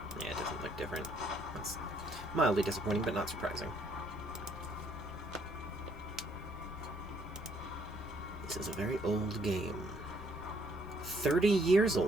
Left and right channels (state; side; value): normal; both; correlation 0.67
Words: Yeah, it doesn't look different. That's mildly disappointing, but not surprising. This is a very old game. 30 years